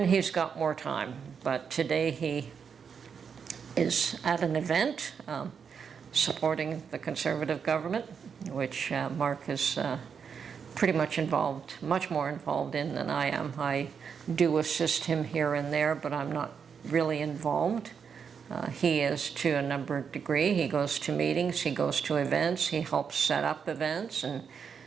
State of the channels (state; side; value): quieter; left; 6.6 dB